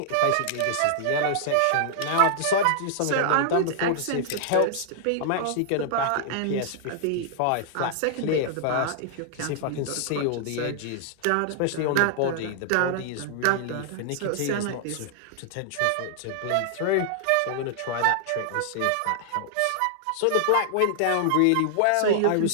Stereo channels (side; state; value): both; different; correlation -0.01